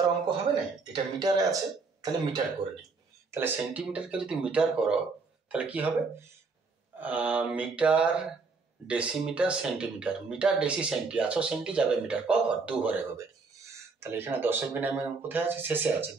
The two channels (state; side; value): quieter; left; 4.3 dB